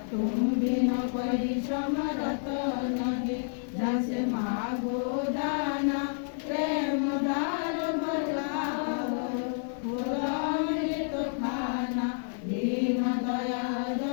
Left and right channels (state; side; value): silent; right; 58 dB below the other